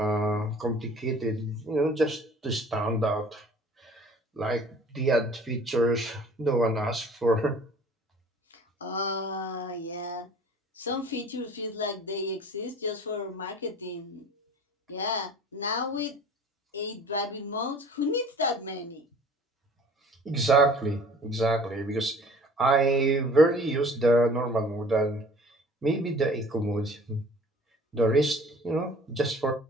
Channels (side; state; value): both; normal; correlation 0.49